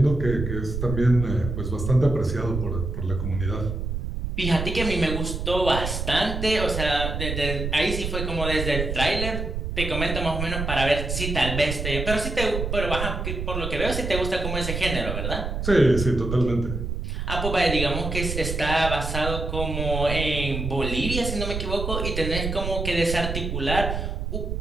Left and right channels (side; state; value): right; noise; rumble, 3 dB below the sound